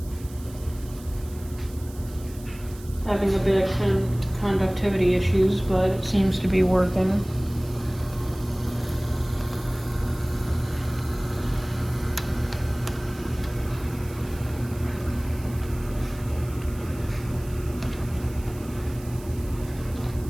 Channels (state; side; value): noise; right; hiss, 20 dB below the sound